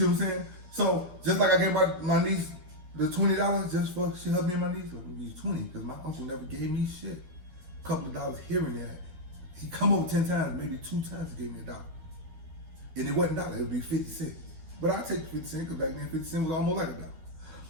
what I'm saying? So just like I gave my niece the $20 just for she helped me and my niece. I'm gonna use 20 because my uncle never gave me shit. A couple of dollars here and there. He come over 10 times, maybe 2 times he gave me $1. And it wasn't $1, it would be 50 cents. But I take 50 cents because back then 50 cents was almost like $1.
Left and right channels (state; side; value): late; left; 12 ms